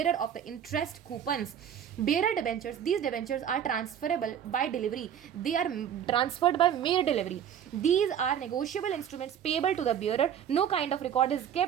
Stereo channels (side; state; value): left; quieter; 9.1 dB